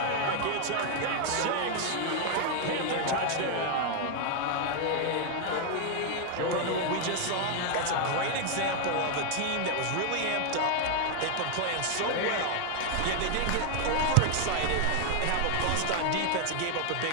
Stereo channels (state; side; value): different; both; correlation 0.00